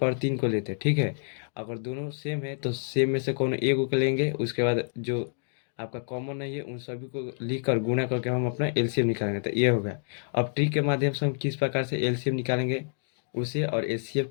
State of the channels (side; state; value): right; silent; digital silence